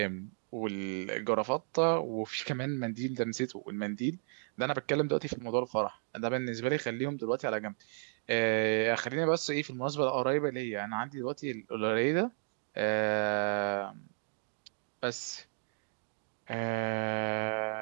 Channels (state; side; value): silent; left; digital silence